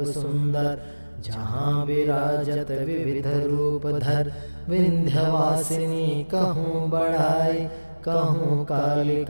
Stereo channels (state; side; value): inverted; both; correlation -1.00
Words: सुंदर जहाँ विराजत विविध रूप धर विंध्यवासिनी कहूँ बढ़ाई कहूँ